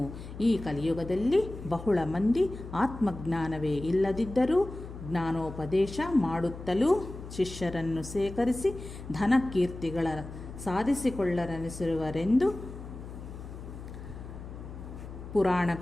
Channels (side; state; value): left; noise; hum, 12 dB below the sound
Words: ಈ ಕಲಿಯುಗದಲ್ಲಿ ಬಹಳ ಮಂದಿ ಆತ್ಮಜ್ಞಾನವೇ ಇಲ್ಲದಿದ್ದರೂ ಜ್ಞಾನೋಪದೇಶ ಮಾಡುತ್ತಲೂ ಶಿಷ್ಯರನ್ನು ಸೇಕರಿಸಿ ಧನ ಕೀರ್ತಿಗಳ ಸಾಧಿಸಿಕೊಳ್ಳರನಿಸಿರುವರೆಂದು